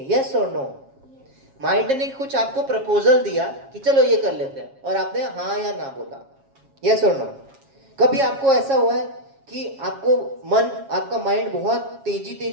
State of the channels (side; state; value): left; late; 7.3 ms